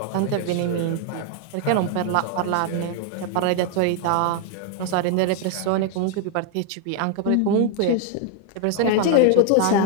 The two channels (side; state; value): both; different; correlation 0.00